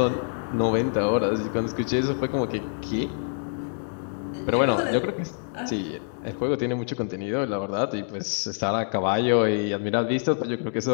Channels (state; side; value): silent; right; 61 dB below the other